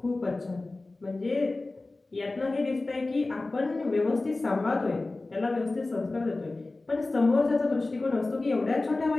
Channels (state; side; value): quieter; right; 3.2 dB